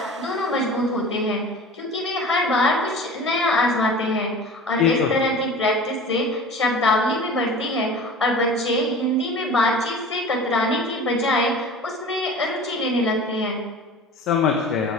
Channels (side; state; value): both; normal; correlation 0.39